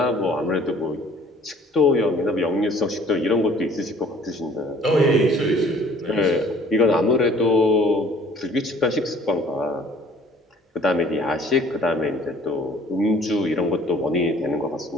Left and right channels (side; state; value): both; normal; correlation 0.54